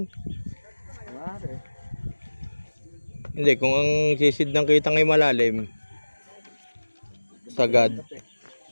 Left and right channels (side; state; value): both; inverted; correlation -1.00